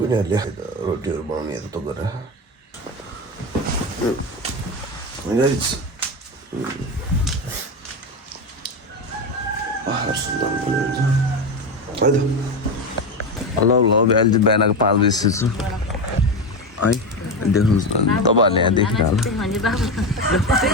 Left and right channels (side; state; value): both; normal; correlation 0.17